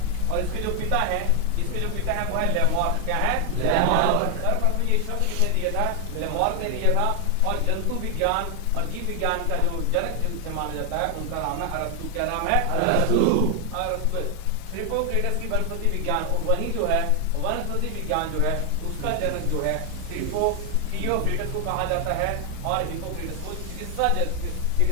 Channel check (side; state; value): both; different; correlation 0.00